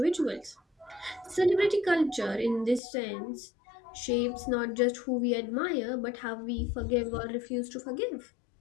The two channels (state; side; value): drops out; right; at 2.8 s